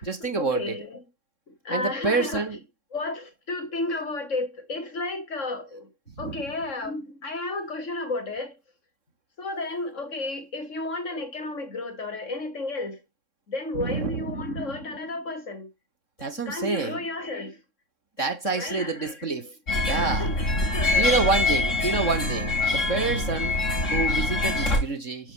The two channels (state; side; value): late; right; 3.6 ms